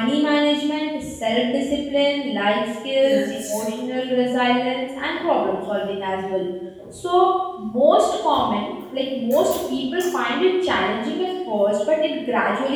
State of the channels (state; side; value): identical; both; correlation 1.00